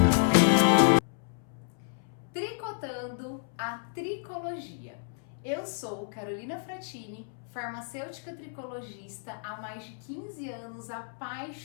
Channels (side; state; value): right; silent; 57 dB below the other